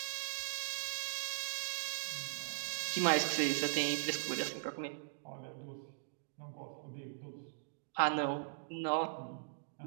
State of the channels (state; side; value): silent; left; digital silence